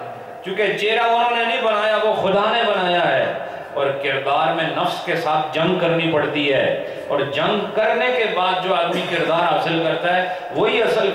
چونکہ چہرہ انہوں نے نہیں بنایا، وہ خدا نے بنایا ہے۔ اور کردار میں نفس کے ساتھ جنگ کرنی پڑتی ہے، اور جنگ کرنے کے بعد جو آدمی کردار حاصل کرتا ہے وہی اصل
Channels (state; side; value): identical; both; correlation 1.00